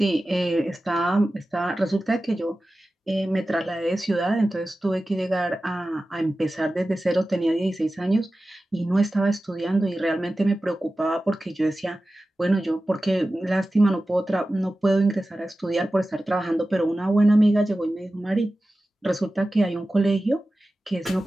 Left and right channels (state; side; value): normal; both; correlation 0.95